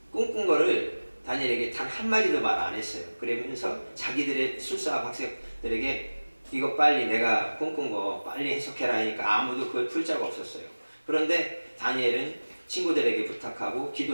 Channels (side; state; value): both; inverted; correlation -1.00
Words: 꿈꾼 거를 다니엘에게 단 한마디도 말 안 했어요. 그러면서 자기들의 술사와 박사들에게 이거 빨리 내가 꿈꾼 거 빨리 해석해라 하니까 아무도 그걸 풀 자가 없었어요. 그런데 다니엘은 친구들에게 부탁하고